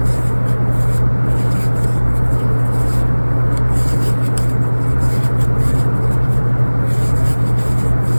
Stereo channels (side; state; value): both; inverted; correlation -1.00